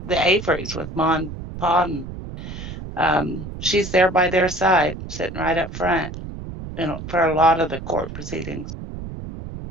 Averys, with Ma and Pa, and she's there by their side, sitting right up front, you know, for a lot of the court proceedings.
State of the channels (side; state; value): right; noise; rumble, 10 dB below the sound